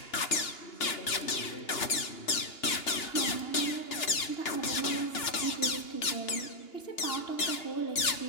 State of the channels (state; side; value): late; right; 2.8 ms